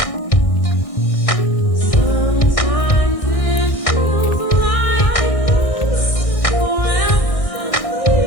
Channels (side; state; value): right; late; 1.6 ms